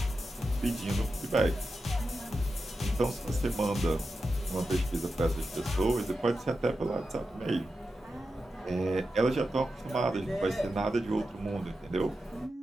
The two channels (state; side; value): normal; both; correlation 0.90